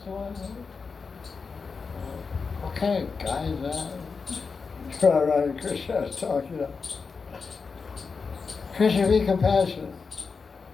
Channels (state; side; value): quieter; right; 5.0 dB